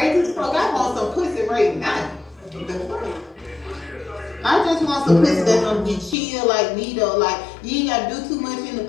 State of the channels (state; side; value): drops out; right; at 6.2 s